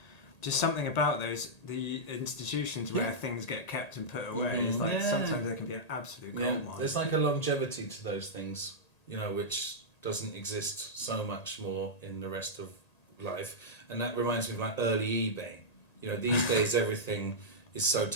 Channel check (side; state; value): right; late; 1.8 ms